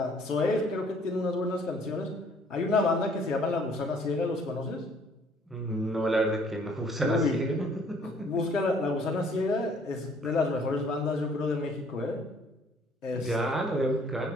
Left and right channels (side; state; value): both; normal; correlation 0.59